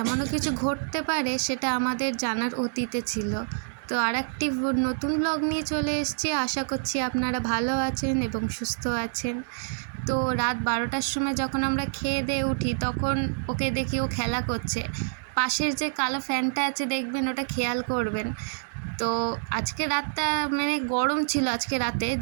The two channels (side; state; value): left; silent; 60 dB below the other